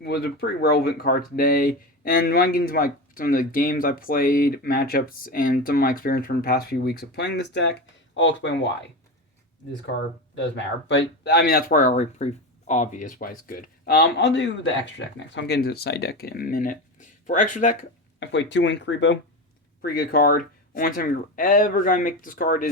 Was a pretty relevant card today, and when I get into some of the games I played, matchups, and some of my experience from the past few weeks of playing this deck, I'll explain why this card does matter. But, I mean, that's probably already pretty obvious why it's good. I'll do the extra deck next. I'll get into the side deck in a minute. For extra deck, I played 2 Wink Rebo. Pretty good card. Only time you're ever going to make this card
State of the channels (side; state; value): both; normal; correlation 0.22